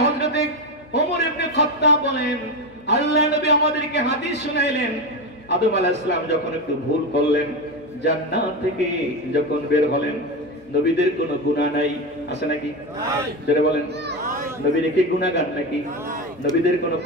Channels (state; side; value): noise; left; hum, 27 dB below the sound